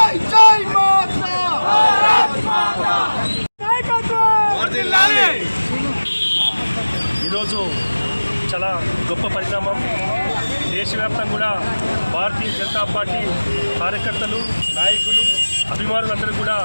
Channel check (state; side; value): inverted; both; correlation -1.00